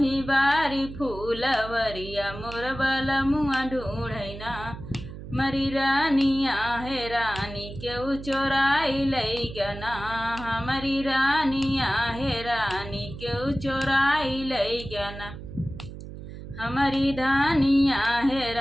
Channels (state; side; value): noise; right; hum, 12 dB below the sound